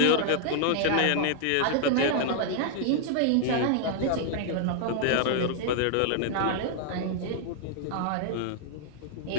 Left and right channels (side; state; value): both; different; correlation 0.00